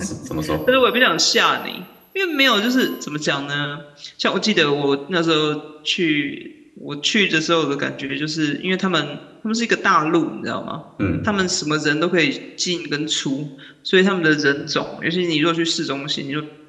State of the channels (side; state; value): both; identical; correlation 1.00